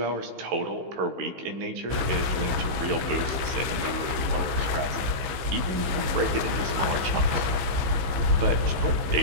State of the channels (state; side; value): late; left; 15 ms